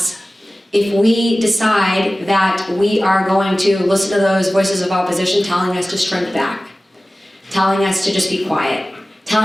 if we decide that we are going to listen to those voices of opposition telling us to shrink back, telling us to just be quiet,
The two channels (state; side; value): normal; both; correlation 0.97